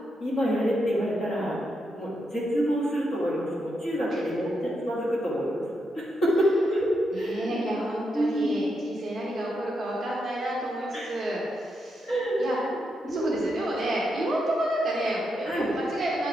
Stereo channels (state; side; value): normal; both; correlation 0.83